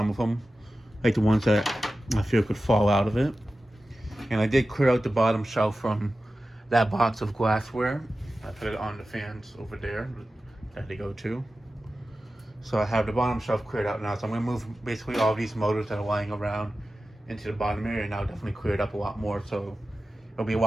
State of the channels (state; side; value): normal; both; correlation 0.94